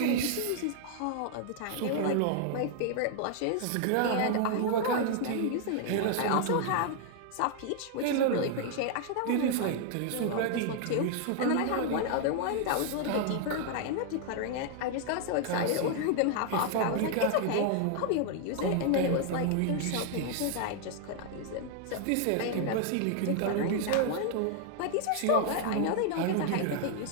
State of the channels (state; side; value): different; both; correlation 0.00